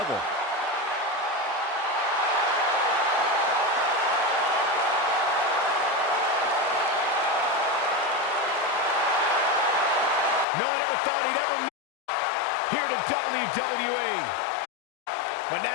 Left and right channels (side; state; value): right; drops out; at 10.5 s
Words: No one ever thought he'd ever make here to WWE. But